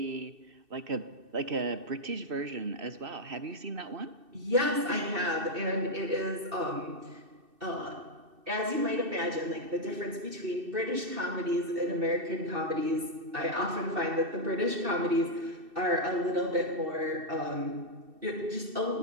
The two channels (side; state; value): left; late; 2.6 ms